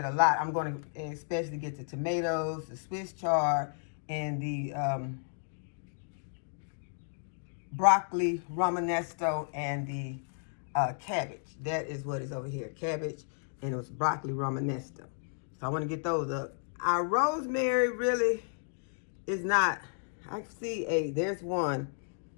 a lot. I'm going to especially get the tomatoes, the Swiss chard, and the broccoli romanesco, and the cabbage. That is what is over here. Cabbage, and it was broccoli romanesco. So I want to get those up. Our rosemary really is not. I see there's one.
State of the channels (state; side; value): silent; right; digital silence